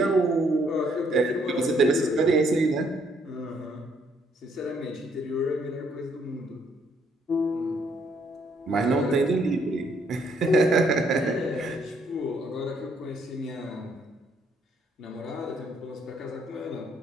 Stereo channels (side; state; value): both; normal; correlation 0.69